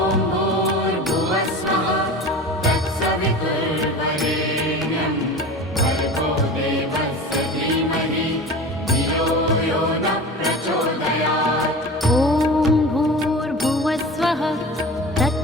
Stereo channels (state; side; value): normal; both; correlation 0.34